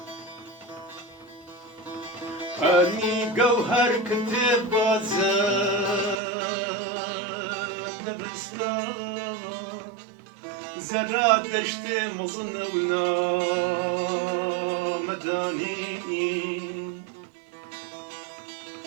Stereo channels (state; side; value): drops out; left; at 6.2 s